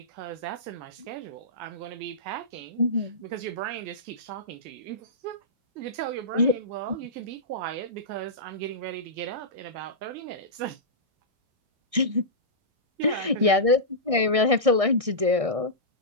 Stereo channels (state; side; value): late; left; 1.6 ms